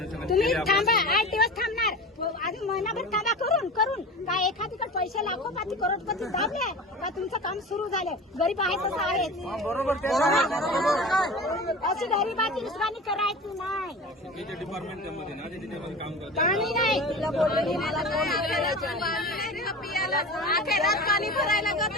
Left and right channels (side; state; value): both; normal; correlation 0.33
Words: तुम्ही थांबा, 8 दिवस थांबणार, अजून महिनाभर थांबा. करून काय एखादीकडे पैसे लाखोपाती करोडपती दाबले का तुमचं काम सुरू झालं? गरीब आहे तसं आहे. बरोबर. अशी गरीबाची दुश्मनी करायची नाही. डिपार्टमेंट मध्ये ना ते त्याच्यामध्ये काम करतात. पाणी नाही तुला बोलले मला पाणी भरायला